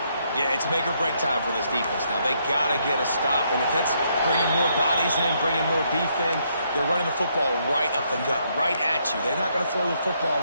Yeah, it's make or break time for this defense. Now, they got to get a stop. And if that's bringing more bodies in, bringing more beef in, they're running the football right up the gut, right at you. They're not going to throw the football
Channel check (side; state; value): both; inverted; correlation -0.73